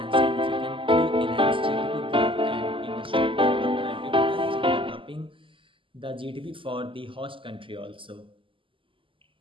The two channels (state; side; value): late; left; 0.25 ms